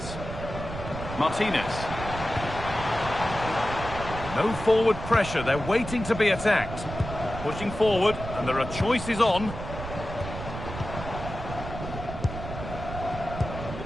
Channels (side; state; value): right; noise; rumble, 8 dB below the sound